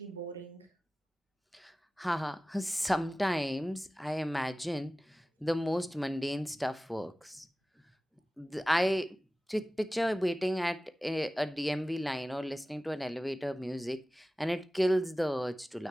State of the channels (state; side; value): normal; both; correlation 0.97